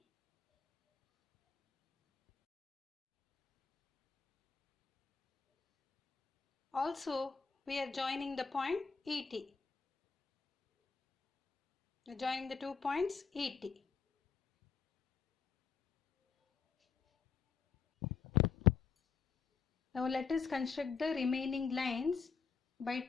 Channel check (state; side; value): quieter; right; 5.8 dB